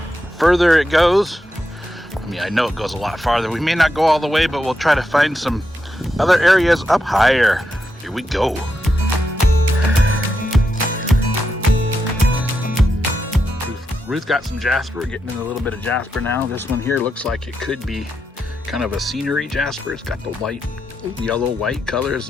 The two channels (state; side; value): normal; both; correlation 0.85